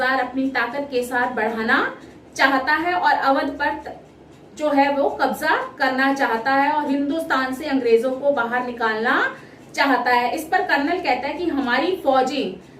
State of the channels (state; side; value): identical; both; correlation 1.00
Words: अपनी ताकत के साथ बढ़ाना चाहता है और अवध पर जो है वो कब्जा करना चाहता है और हिंदुस्तान से अंग्रेजों को बाहर निकालना चाहता है। इस पर कर्नल कहता है कि हमारी